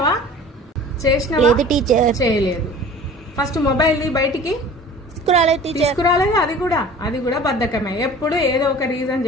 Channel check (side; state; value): both; normal; correlation 0.44